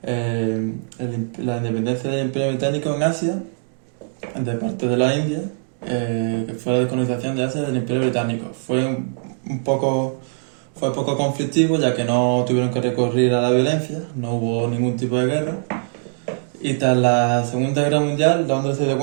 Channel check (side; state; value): left; silent; digital silence